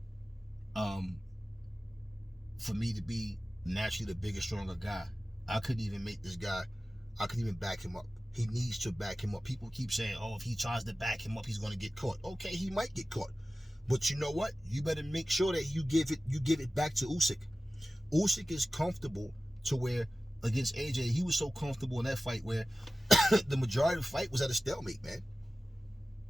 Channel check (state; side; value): normal; both; correlation 0.95